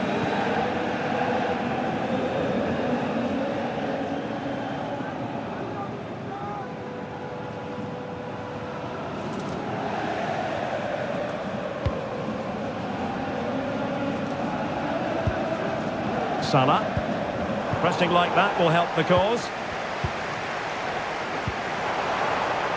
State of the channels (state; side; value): identical; both; correlation 1.00